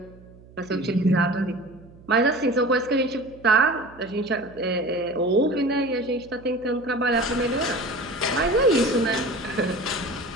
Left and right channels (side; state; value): right; noise; hum, 23 dB below the sound